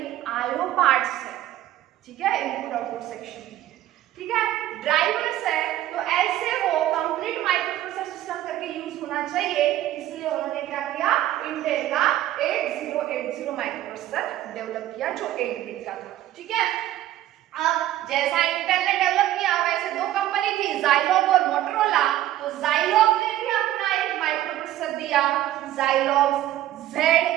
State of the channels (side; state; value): left; quieter; 13.6 dB